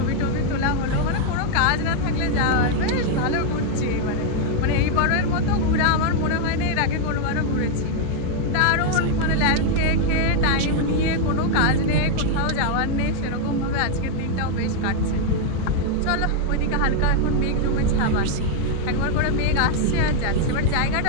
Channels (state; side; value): different; both; correlation 0.00